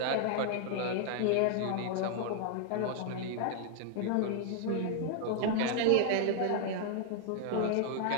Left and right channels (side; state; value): both; different; correlation 0.00